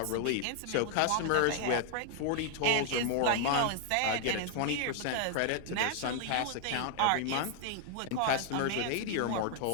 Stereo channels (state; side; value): different; both; correlation 0.00